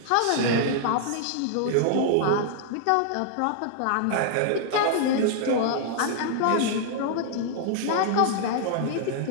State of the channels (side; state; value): both; different; correlation -0.01